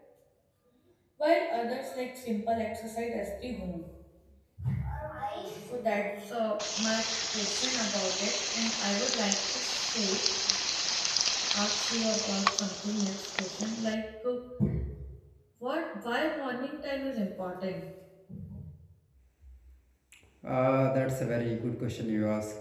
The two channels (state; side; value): identical; both; correlation 1.00